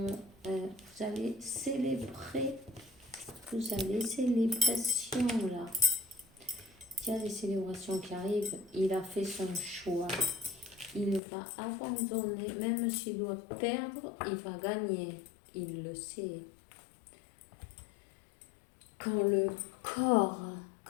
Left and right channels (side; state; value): right; drops out; at 11.2 s